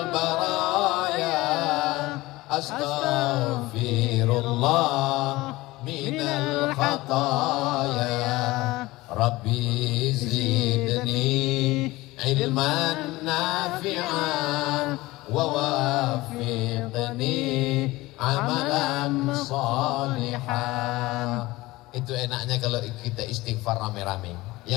baraya, astaghfirullah minal khataya, Rabbi zidni ilman nafi'an wa wafiqni amalan salihah. Itu enaknya kalau kita istighfar rame-rame.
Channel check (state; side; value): quieter; right; 19.6 dB